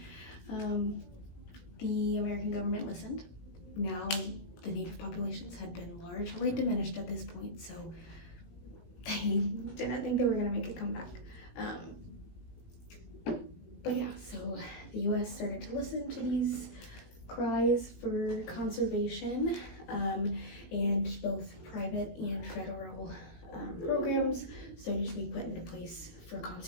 the American government listened. Now, the native populations had been largely diminished at this point, so they didn't think they were going to make a comeback. But yeah, so the US started to listen to these cries for conservation, and both private and federal programs started to be put into place for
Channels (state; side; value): late; right; 18 ms